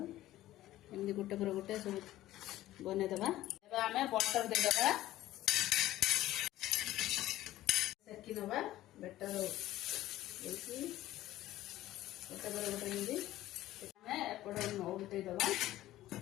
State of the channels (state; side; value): quieter; right; 15.0 dB